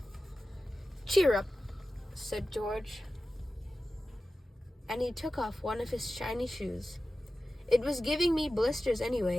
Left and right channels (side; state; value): both; normal; correlation 0.94